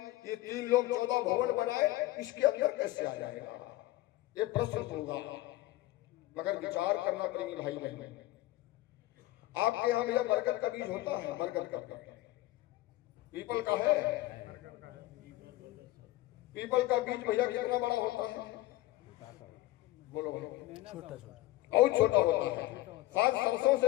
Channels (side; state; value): right; quieter; 17.2 dB